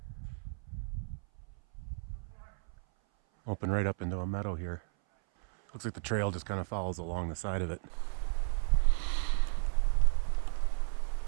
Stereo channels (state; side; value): silent; left; 55 dB below the other